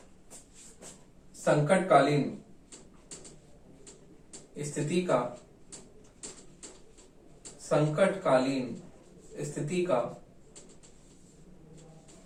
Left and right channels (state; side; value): identical; both; correlation 1.00